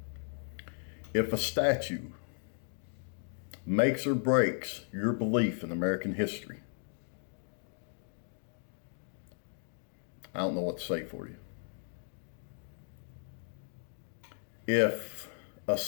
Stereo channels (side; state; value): right; silent; digital silence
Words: If a statue makes or breaks your belief in American history, I don't know what to say for you. If a